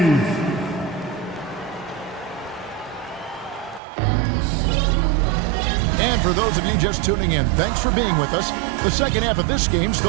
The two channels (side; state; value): left; drops out; at 3.8 s